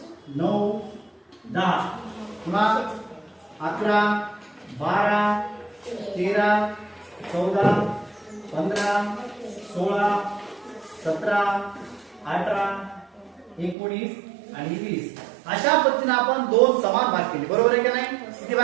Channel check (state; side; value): drops out; left; at 13.8 s